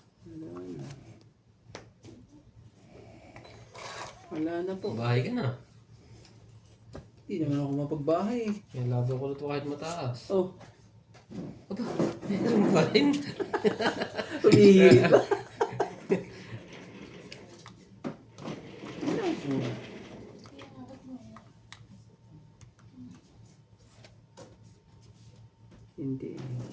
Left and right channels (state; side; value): identical; both; correlation 1.00